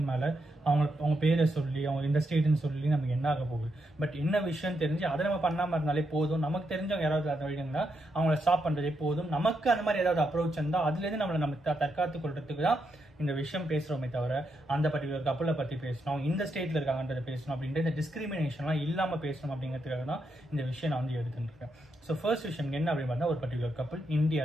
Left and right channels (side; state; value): both; normal; correlation 0.82